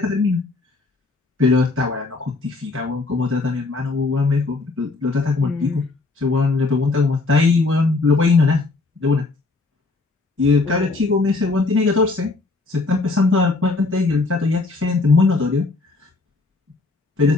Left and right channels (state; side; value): quieter; right; 3.6 dB